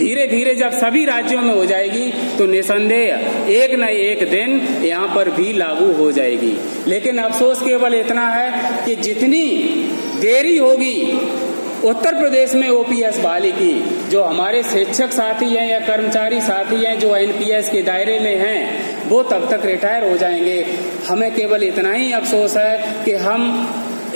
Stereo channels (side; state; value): both; inverted; correlation -1.00